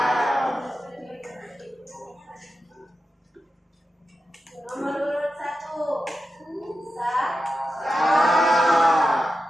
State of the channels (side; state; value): both; normal; correlation 0.91